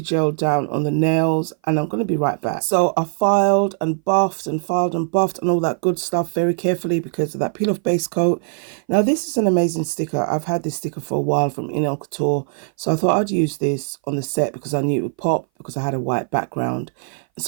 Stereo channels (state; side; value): silent; left; 59 dB below the other